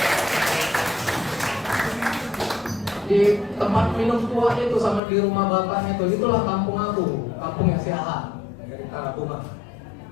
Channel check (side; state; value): right; drops out; at 5.0 s